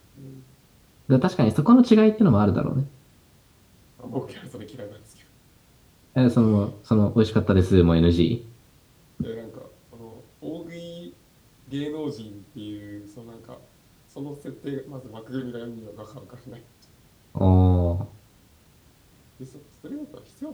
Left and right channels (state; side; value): identical; both; correlation 1.00